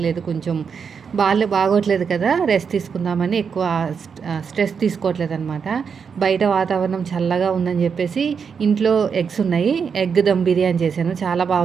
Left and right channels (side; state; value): left; quieter; 6.3 dB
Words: లేదు. కొంచెం బాగోట్లేదు కదా, రెస్ట్ తీసుకుందామని ఎక్కువ స్ట్రెస్ తీసుకోవట్లేదు అనమాట. బయట వాతావరణం చల్లగా ఉందని చెప్పేసి ఇంట్లో ఎగ్స్ ఉన్నాయి. ఎగ్ దమ్ బిర్యానీ చేశాను, చాలా బాగా